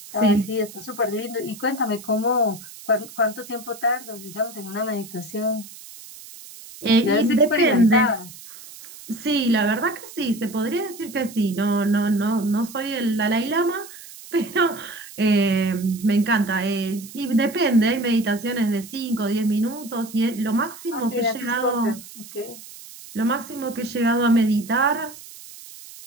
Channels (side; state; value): right; noise; hiss, 17 dB below the sound